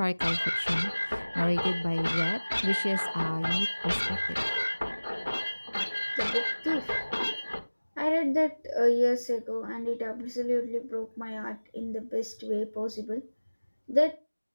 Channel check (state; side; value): inverted; both; correlation -1.00